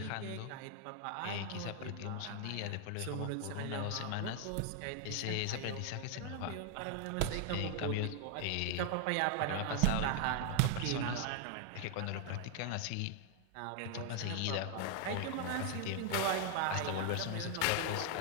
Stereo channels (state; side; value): different; both; correlation 0.00